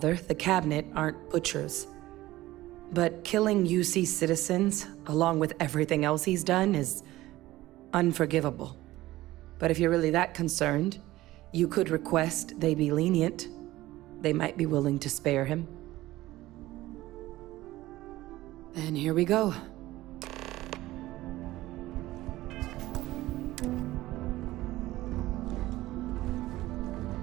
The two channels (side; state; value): left; quieter; 16.9 dB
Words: the cabinet aren't butchers. But killing UC citizens, along with everything else he's done, is unforgivable. But if you're really that concerned, you could request they be lenient. They might be willing to spare him. And here we go.